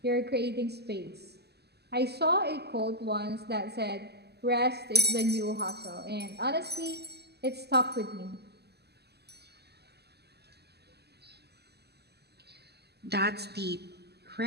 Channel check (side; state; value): left; late; 0.47 ms